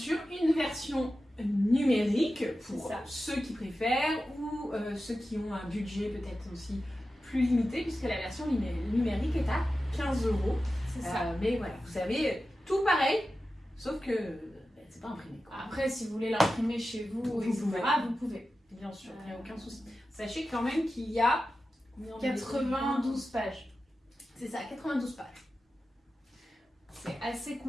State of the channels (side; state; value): both; normal; correlation 0.93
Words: une version numérique pour ceux qui préfèrent ou ceux qui ont un budget peut-être aussi plus limité, puisque la version numérique est à 15 €. C'est ça. Mais voilà, vous avez tout pareil, sauf que c'est pas imprimé. Après, si vous voulez l'imprimer chez vous, vous pouvez. Bien sûr, il n'y a aucun souci. Sachez quand même qu'il y a 92 pages. C'est ça, 92 pages. C'est assez